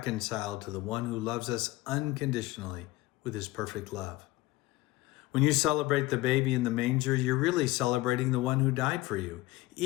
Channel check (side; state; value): right; quieter; 18.9 dB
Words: to the one who loves us unconditionally with his perfect love. When you celebrate the baby in the manger, you're really celebrating the one who died for you,